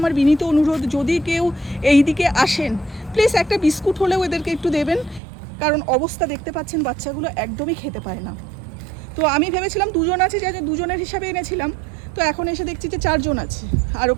বিনীত অনুরোধ, যদি কেউ এই দিকে আসেন প্লিজ একটা বিস্কুট হলেও এদেরকে একটু দেবেন, কারণ অবস্থা দেখতে পাচ্ছেন বাচ্চাগুলো একদমই খেতে পায় না। তো আমি ভেবেছিলাম দুজন আছে, যে দুজনের হিসাবে এনেছিলাম, তো এখন এসে দেখছি যে চারজন আছে, আরও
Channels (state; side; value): drops out; left; at 5.2 s